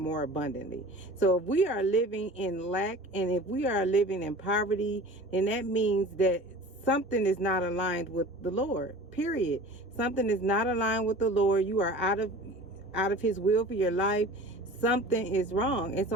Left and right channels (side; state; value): both; normal; correlation 0.40